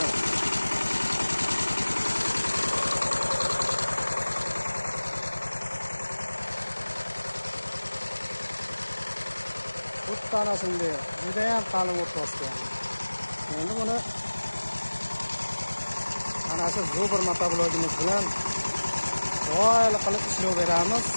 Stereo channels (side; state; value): both; inverted; correlation -1.00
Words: Ana shunday juda ham qalin o't bosgan. Endi buni ana shu zo'bir motoblogimiz bilan do'yli qilib ishlov beramiz.